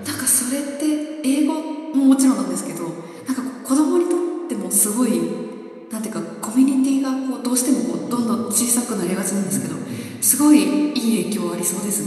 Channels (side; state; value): both; identical; correlation 1.00